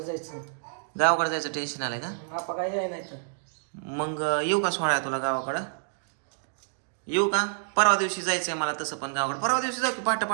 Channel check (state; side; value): silent; left; digital silence